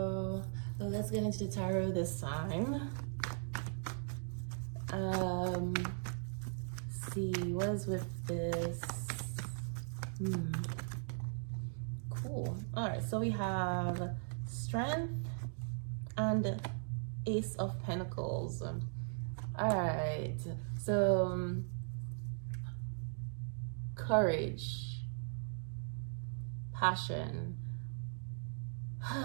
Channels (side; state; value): left; silent; digital silence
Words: let's get into the tarot this time. See, what is with this? Cool. All right, so we have Strength and Ace of Pentacles. All right, so courage, passion.